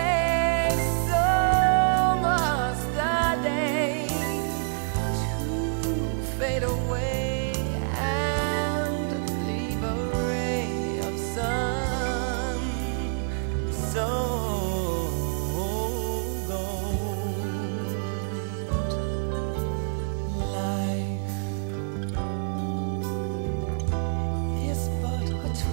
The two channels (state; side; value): silent; left; digital silence